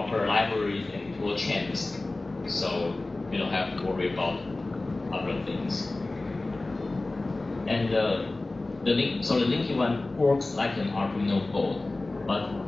libraries and tool chains, so you don't have to worry about other things. And the Linkit ONE works like an Arduino board, but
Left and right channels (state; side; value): quieter; right; 3.0 dB